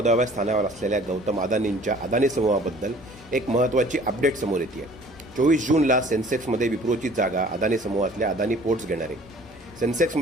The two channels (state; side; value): normal; both; correlation 0.51